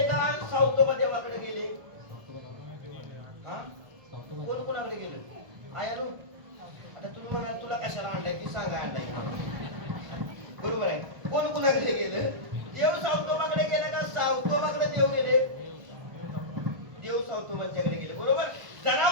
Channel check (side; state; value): left; late; 1.4 ms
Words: का? सावतोबा देवाकडे गेले? कोण कोणाकडे गेलं? आयानो, आता तुम्ही म्हणाल तुला कशाला आणलाय ती सांगा. आणलाय बरोबर आहे. कोण कोणाकडे गेलं? देव सावतोबाकडे गेले का सावतोबाकडे देव गेले? देव सावतोबांच्याकडे गेले बरोबर.